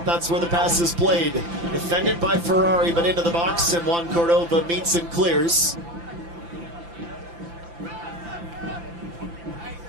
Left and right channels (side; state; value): left; late; 5.9 ms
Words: That's where the pass is played. Defended by Ferrari, but into the box, and Juan Cordova meets and clears.